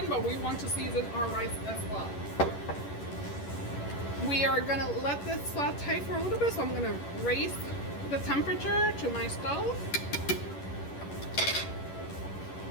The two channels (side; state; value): right; late; 11 ms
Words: but we want to season our rice as well. We are gonna let this saute for a little bit, so I'm gonna raise the temperature to my stove